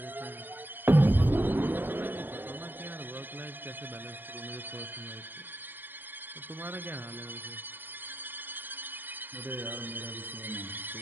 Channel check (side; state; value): left; late; 0.093 ms